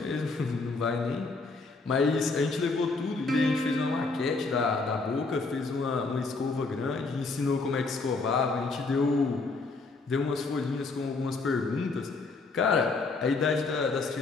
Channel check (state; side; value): quieter; right; 3.8 dB